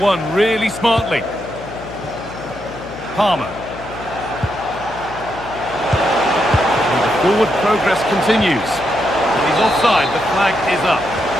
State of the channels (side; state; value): left; noise; hum, 15 dB below the sound